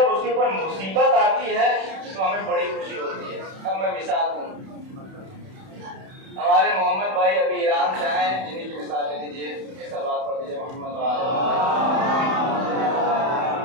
اس کے اوپر مصیبت آتی ہے تو ہمیں بڑی خوشی ہوتی ہے۔ اب میں مثال دوں، ہمارے محمد بھائی ابھی ایران سے آئے ہیں، جنہیں کی مثال لے لیجیے، ایک سلوات پڑھ دیجیے محمد بھائی۔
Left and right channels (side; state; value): left; late; 31 ms